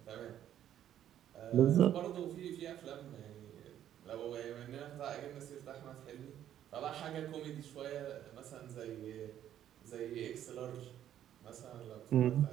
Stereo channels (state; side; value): quieter; left; 11.0 dB